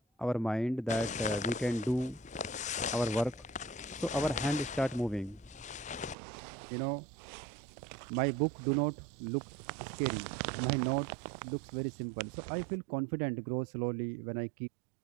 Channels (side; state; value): left; drops out; at 6.2 s